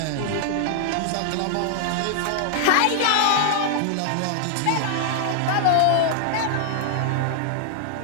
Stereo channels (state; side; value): different; both; correlation -0.01